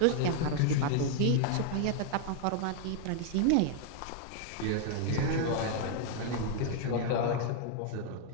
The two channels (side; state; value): both; different; correlation 0.00